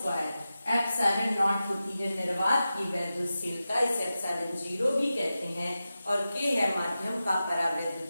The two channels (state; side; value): inverted; both; correlation -0.93